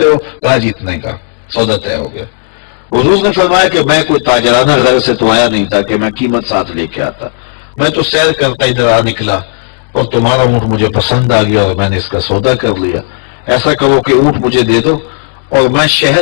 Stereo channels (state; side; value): silent; right; digital silence